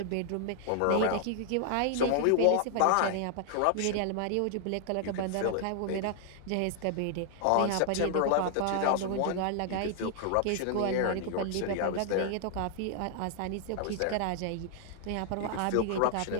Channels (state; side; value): different; both; correlation 0.00